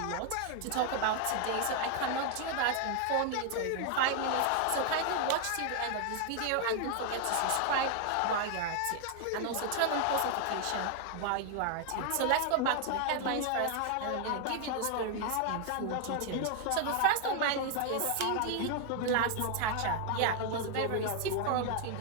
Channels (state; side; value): different; both; correlation 0.00